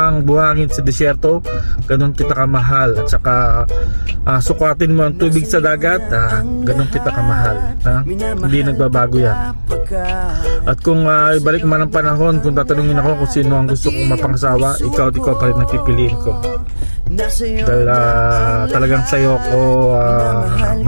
buhangin sa desyerto, ganun kita kamahal. At saka sukatin mo ang tubig sa dagat, ganun kita kamahal. Hindi nagbabago yan. At kung ibalik man ang panahon, kung tatanungin ako kung sino ang gusto kong mapangasawa, ikaw pa rin ang pipiliin ko. Dahil talagang sa'yo ako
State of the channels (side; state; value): both; inverted; correlation -1.00